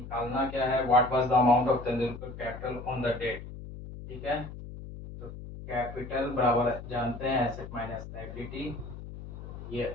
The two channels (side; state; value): left; noise; hum, 12 dB below the sound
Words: क्या है? What was the amount of Tendulkar capital on the date, ठीक है। तो कैपिटल बराबर जानते हैं एसेट माइनस लायबिलिटी, ये